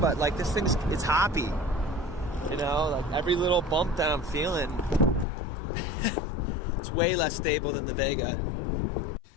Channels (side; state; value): right; drops out; at 5.2 s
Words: this it's hoppy. Every little bump that I'm feeling, it's way less stable than the Vega.